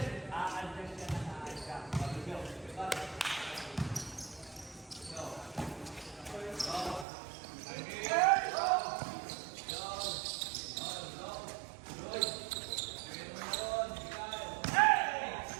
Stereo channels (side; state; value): left; drops out; at 7.1 s